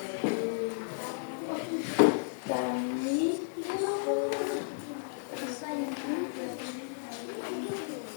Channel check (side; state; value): right; silent; digital silence